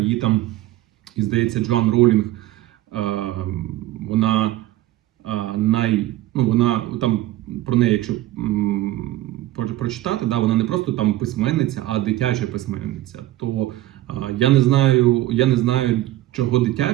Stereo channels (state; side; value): quieter; left; 15.2 dB